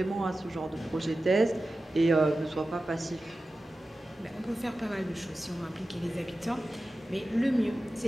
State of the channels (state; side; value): normal; both; correlation 0.94